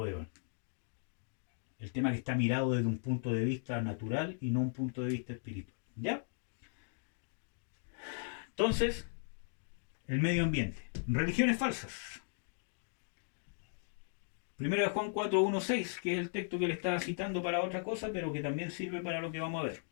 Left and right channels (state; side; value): silent; right; digital silence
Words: El tema que está mirado desde un punto de vista natural y no un punto de vista espiritual. ¿Ya? Entonces, el medio ambiente. Religiones falsas. 1 de Juan 4, 1, 6, que es el texto que le estaba citando para otra cosa, pero que también sirve para lo que vamos a ver.